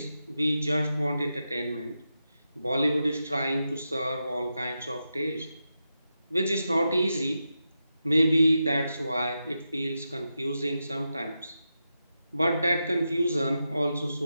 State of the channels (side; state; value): both; inverted; correlation -0.88